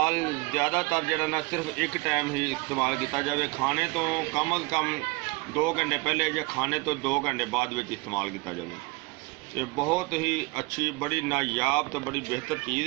ज़्यादातर जिहड़ा ना सिर्फ एक टाइम ही इस्तेमाल किया जाए, खाने तो कम अज़ कम 2 घंटे पहले या खाने तो 2 घंटे बाद विच इस्तेमाल किया जाए। ये बहुत ही अच्छी, बड़ी नायाब तो बड़ी बेहतर चीज़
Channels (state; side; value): quieter; left; 25.5 dB